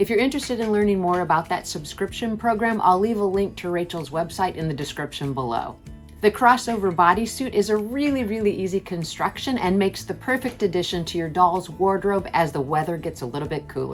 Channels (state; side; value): identical; both; correlation 1.00